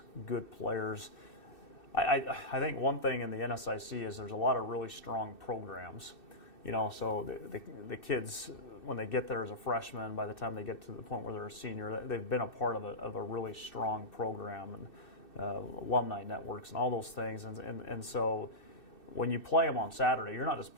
good players. I think one thing in the NSIC is there's a lot of really strong programs. So the kids, when they get there as a freshman, by the time they get to the point where they're a senior, they've been a part of a really strong program, and alumni networks and all those things. And so when you play them on Saturday, you're not just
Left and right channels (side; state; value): right; late; 2.6 ms